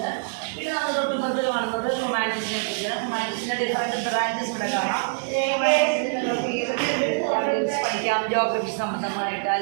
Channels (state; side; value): silent; left; digital silence